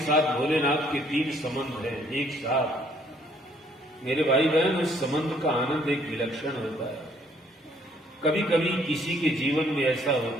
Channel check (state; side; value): normal; both; correlation 0.64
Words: साथ भोलेनाथ के 3 संबंध हैं एक साथ। मेरे भाई बहन, उस संबंध का आनंद एक विलक्षण होता है। कभी कभी किसी के जीवन में ऐसा